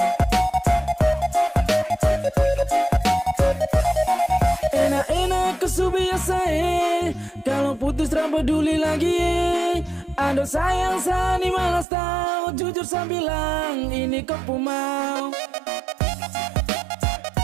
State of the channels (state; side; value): drops out; left; at 11.9 s